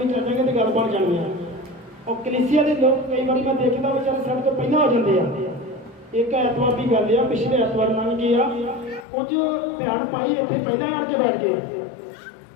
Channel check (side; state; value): right; drops out; at 9.1 s